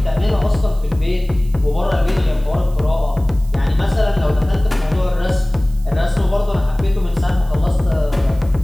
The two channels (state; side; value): noise; right; hiss, 26 dB below the sound